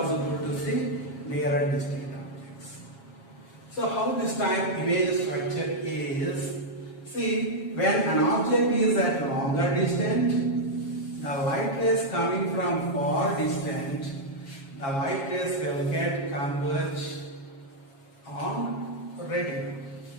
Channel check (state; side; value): late; right; 7.3 ms